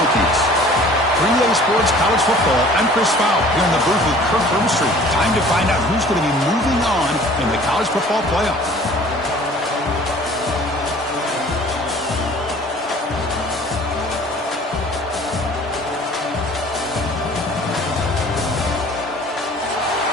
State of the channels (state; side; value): normal; both; correlation 0.49